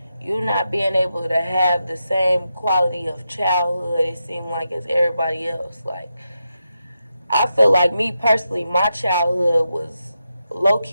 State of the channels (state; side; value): inverted; both; correlation -0.87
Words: not being able to have the same quality of childhood, it seemed like, as everybody else. Like, I feel like, me personally, my childhood was